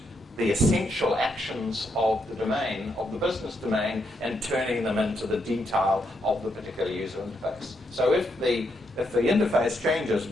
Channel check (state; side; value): normal; both; correlation 0.79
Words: the essential actions of the domain, of the business domain, and turning them into the detail of the particular user interface. So if the interface changes,